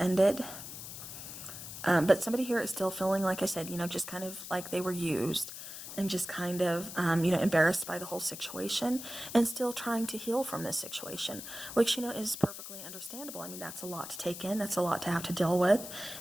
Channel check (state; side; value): noise; left; hiss, 10 dB below the sound